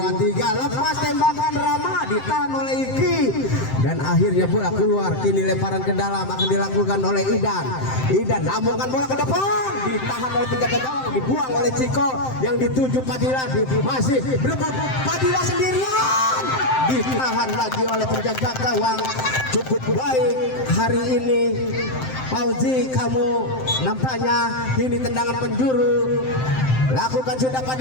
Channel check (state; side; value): late; right; 7.7 ms